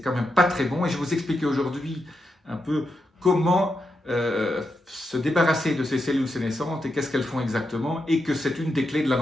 même pas très bon. Et je vais vous expliquer aujourd'hui un peu comment se débarrasser de ces cellules sénescentes et qu'est-ce qu'elles font exactement, et que c'est une des clés de la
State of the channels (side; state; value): both; normal; correlation 0.85